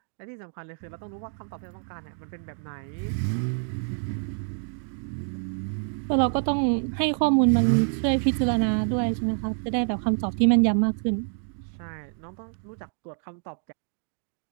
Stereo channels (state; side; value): silent; left; 60 dB below the other